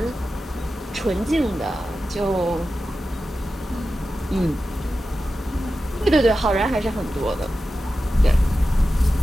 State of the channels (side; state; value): both; normal; correlation 0.93